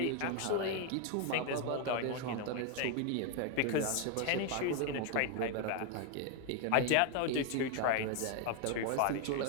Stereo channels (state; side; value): different; both; correlation 0.01